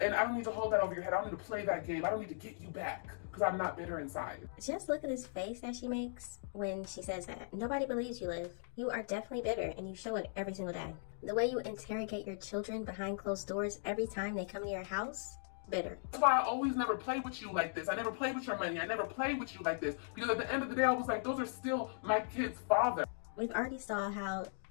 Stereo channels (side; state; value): right; silent; digital silence